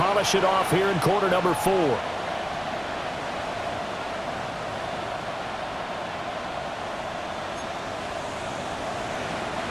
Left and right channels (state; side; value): identical; both; correlation 1.00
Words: it off here in quarter number 4.